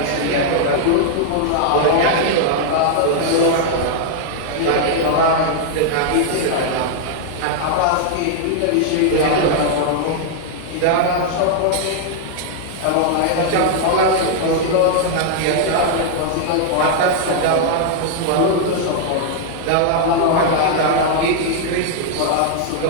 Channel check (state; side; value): different; both; correlation -0.01